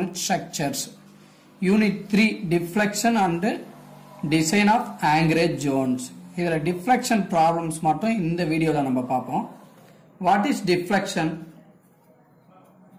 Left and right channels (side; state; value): both; identical; correlation 1.00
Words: structures unit 3 deflection and design of anchorage zones. இதுல டிஃப்ளெக்ஷன் ப்ராப்ளம்ஸ் மட்டும் இந்த வீடியோல நம்ம பார்ப்போம். What is deflection?